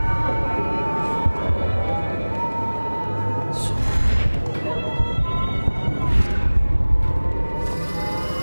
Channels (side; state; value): both; inverted; correlation -1.00